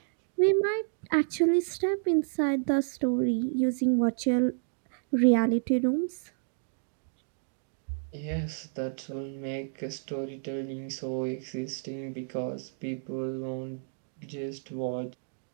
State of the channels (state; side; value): silent; left; digital silence